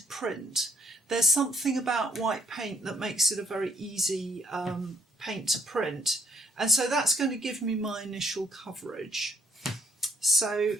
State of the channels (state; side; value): normal; both; correlation 0.68